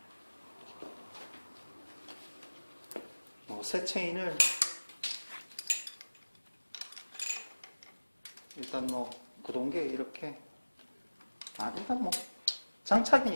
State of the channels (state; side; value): inverted; both; correlation -1.00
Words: 새 체인을 일단 구동계 이렇게 일단